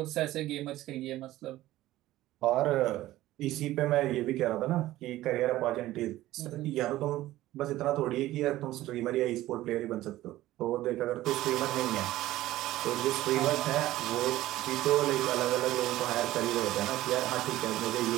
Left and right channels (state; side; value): quieter; left; 15.7 dB